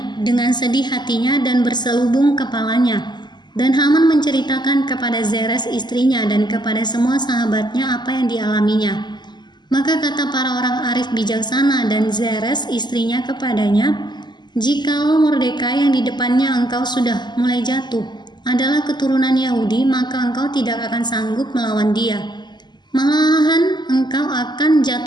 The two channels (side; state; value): right; late; 0.21 ms